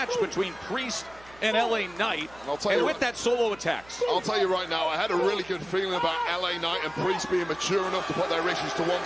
between Priest and LA Knight, and with that solo attacks. I'll tell you right now, I had a really good feeling about LA Knight and Priest being mature enough to put their issues to one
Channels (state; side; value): noise; right; hum, 24 dB below the sound